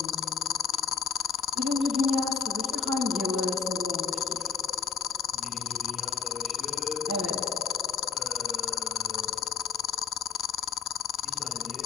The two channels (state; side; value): quieter; right; 6.9 dB